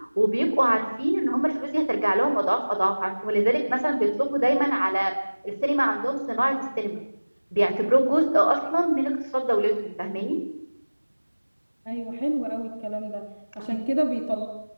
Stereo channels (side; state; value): both; inverted; correlation -1.00